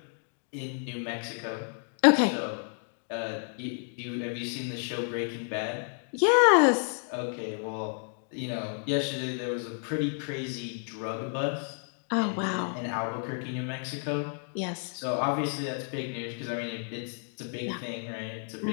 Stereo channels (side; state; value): right; silent; 57 dB below the other